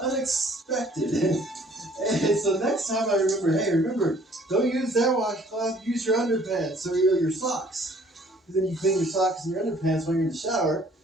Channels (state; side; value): normal; both; correlation 0.57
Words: unexpected. And so next time I remember, don't use that washcloth, use your underpants or your socks. Because then you clean your socks and your underpants when you're in the shower.